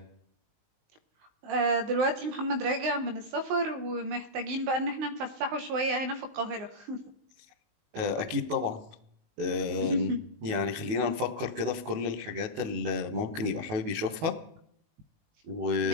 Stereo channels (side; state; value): left; late; 19 ms